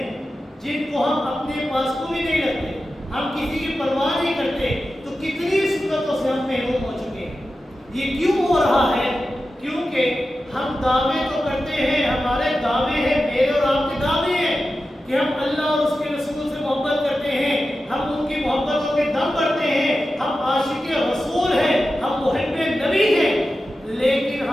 جن کو ہم اپنے پاس کو بھی نہیں رکھتے، ہم کسی کی پرواہ نہیں کرتے. تو کتنی سنتوں سے ہم محروم ہو چکے ہیں. یہ کیوں ہو رہا ہے؟ کیونکہ ہم دعوے تو کرتے ہیں، ہمارے دعوے ہیں، میرے اور آپ کے دعوے ہیں کہ ہم اللہ اور اس کے رسول سے محبت کرتے ہیں، ہم ان کی محبتوں کے دم بڑھتے ہیں، ہم عاشق رسول ہیں، ہم محب نبی ہیں. لیکن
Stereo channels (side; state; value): both; normal; correlation 0.92